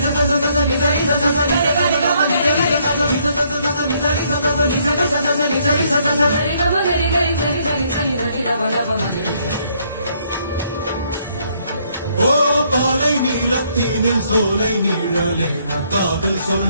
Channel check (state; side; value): inverted; both; correlation -0.69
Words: ஓ பாலை நீளத்தீனில் சோலை நீழலே காதல்